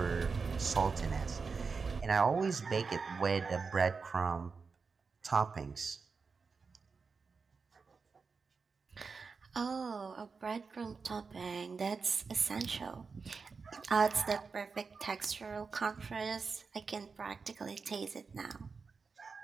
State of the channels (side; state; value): left; quieter; 4.9 dB